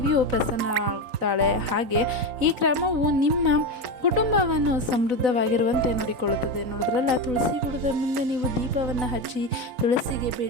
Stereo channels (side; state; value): left; late; 4.0 ms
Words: ಪ್ರಸನ್ನರಾಗುತ್ತಾಳೆ. ಹಾಗೆ ಈ ಕ್ರಮವು ನಿಮ್ಮ ಕುಟುಂಬವನ್ನು ಸಮೃದ್ಧವಾಗಿರುವಂತೆ ನೋಡಿಕೊಳ್ಳುತ್ತದೆ. ನೋಡಿದ್ರಲ್ಲ, ತುಳಸಿ ಗಿಡದ ಮುಂದೆ ನೀವು ದೀಪವನ್ನು ಹಚ್ಚಿ ತುಳಸಿಗೆ